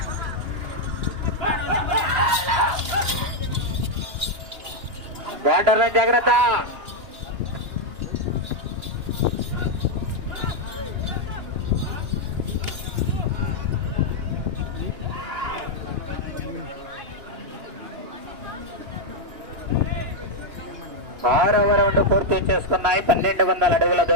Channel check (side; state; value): left; late; 2.9 ms